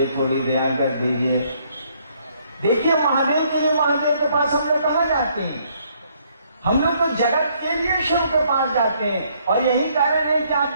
थोड़ी ध्यान कर दीजिए। देखिए महादेव के लिए महादेव के पास हम लोग कहाँ जाते हैं? हम लोग तो जगत के लिए शिव के पास जाते हैं। और यही कारण है कि आप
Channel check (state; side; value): inverted; both; correlation -0.67